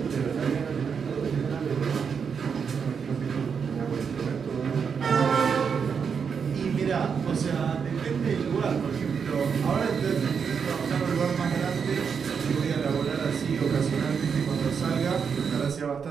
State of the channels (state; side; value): quieter; left; 6.4 dB